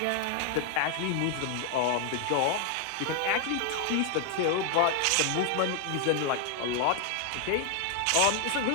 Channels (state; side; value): different; both; correlation 0.00